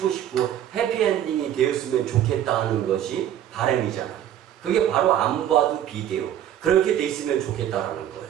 싶고 해피엔딩이 되었으면 좋겠다 하는 것이 바램이잖아요. 그게 바로 안 봐도 비대요. 그렇게 돼 있으면 좋겠다라는 거예요.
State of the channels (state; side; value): quieter; left; 10.9 dB